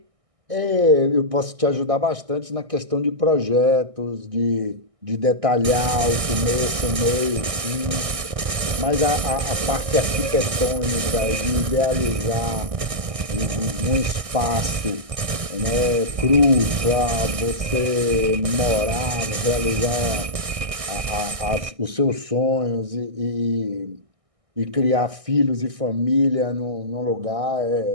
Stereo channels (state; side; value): late; left; 1.6 ms